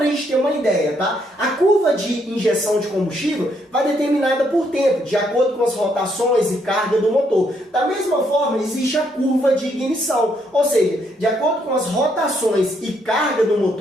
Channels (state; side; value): normal; both; correlation 0.73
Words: a gente ter uma ideia, tá? A curva de injeção de combustível vai determinada por tempo, de acordo com as rotações e carga do motor. Da mesma forma, existe a curva de ignição, ou seja, de acordo com as rotações e carga do